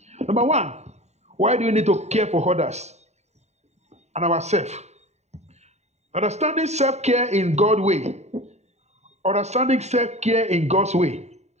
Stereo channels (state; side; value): late; left; 0.32 ms